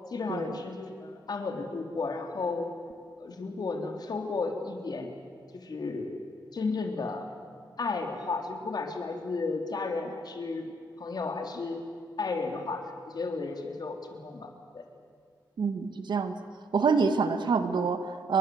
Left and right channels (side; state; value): both; normal; correlation 0.67